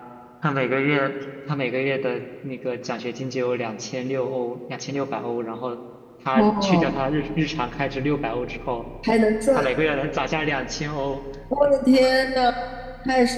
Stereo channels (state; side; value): identical; both; correlation 1.00